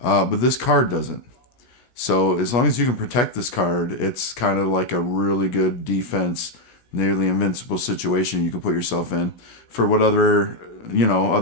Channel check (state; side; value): late; right; 17 ms